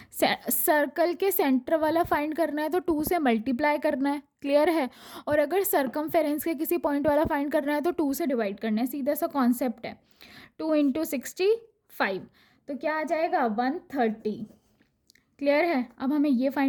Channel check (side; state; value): both; identical; correlation 1.00